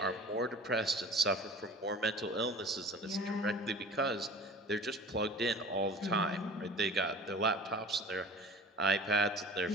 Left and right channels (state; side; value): normal; both; correlation 0.41